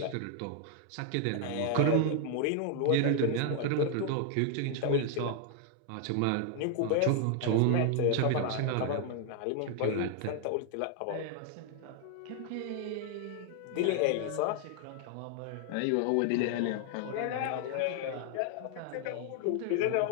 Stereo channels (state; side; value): different; both; correlation 0.00